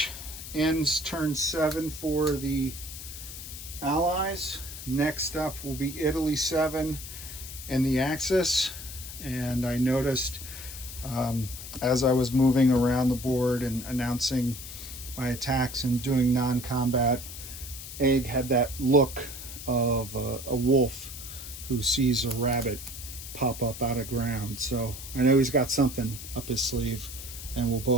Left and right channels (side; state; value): left; noise; hiss, 11 dB below the sound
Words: ends turn 7 for the Allies. Next up will be Italy 7 and the Axis. And I noticed as I was moving around the board and announcing my attacks and doing non-combat, Egg had that look of a wolf who sees a rabbit pop up out of ground. So I know he's got something up his sleeve, and we'll